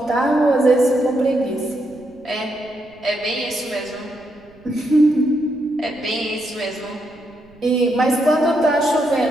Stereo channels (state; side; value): noise; right; rumble, 28 dB below the sound